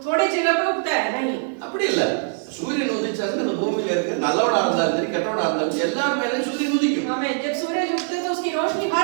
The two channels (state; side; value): silent; left; 60 dB below the other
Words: थोड़े जगह पे उगता है नहीं, அப்படி இல்ல। சூரியன் உதிச்சாச்சு இந்த பூமியில இருக்க நல்லவனா இருந்தாலும் சரி கெட்டவனா இருந்தாலும் எல்லாரும் மேலயும் சூரியன் உதிக்கும்। आमीन। जब सूरज उगते है तो उसकी रोशनी हर